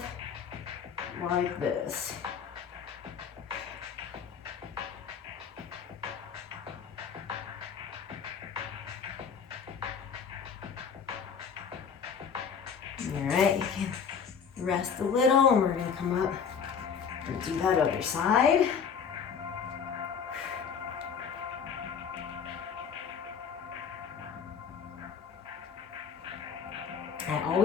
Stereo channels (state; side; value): quieter; right; 6.8 dB